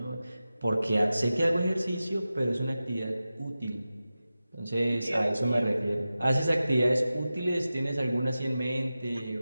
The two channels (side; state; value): both; inverted; correlation -0.94